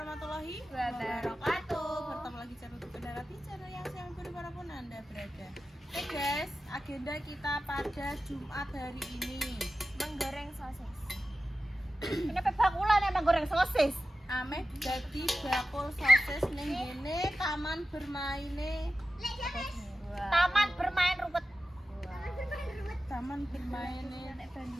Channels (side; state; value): both; normal; correlation 0.93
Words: Wabarakatuh. Bertemu lagi channel Kendara di channel yang sayang dimanapun anda berada. Oke guys, agenda kita pada Jumat hari ini Menggoreng sosis. Ini bakulan emang goreng sosis. Ame jadi bakul sosis ning ngene taman bermaine. Taman bermain rumput. Taman bermaine. Nek